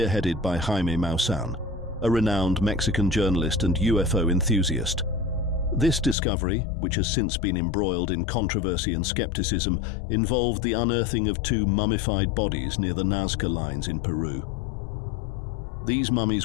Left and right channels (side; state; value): right; drops out; at 6.2 s